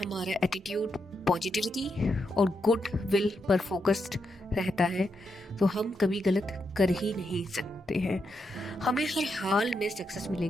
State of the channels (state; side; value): normal; both; correlation 0.83